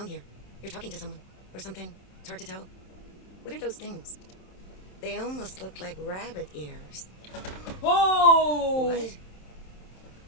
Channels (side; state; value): right; late; 27 ms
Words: here. You're talking to someone. Or something. It's hard to tell. What are those things? They almost look like rabbit ears. Oh! What?